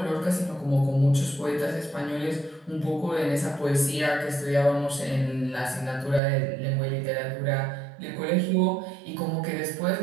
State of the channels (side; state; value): left; drops out; at 6.2 s